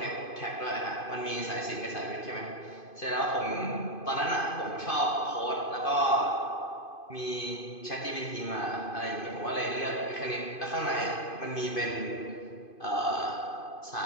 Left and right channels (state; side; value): late; right; 2.5 ms